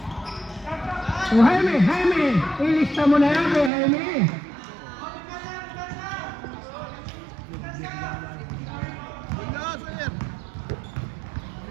O Jaime, ilista mo na yan kay Jaime.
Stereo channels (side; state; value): left; drops out; at 3.7 s